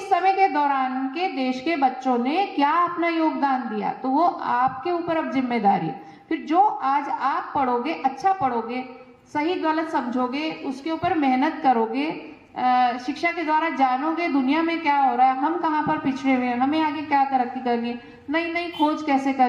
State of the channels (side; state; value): both; identical; correlation 1.00